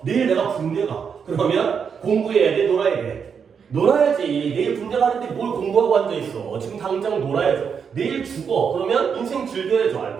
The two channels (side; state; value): left; quieter; 6.6 dB